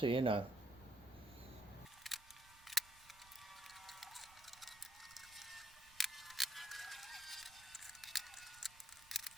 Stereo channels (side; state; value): right; noise; rumble, 23 dB below the sound